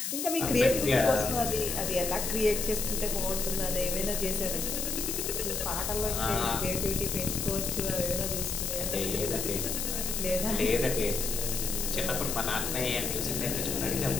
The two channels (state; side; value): noise; left; hiss, 2 dB below the sound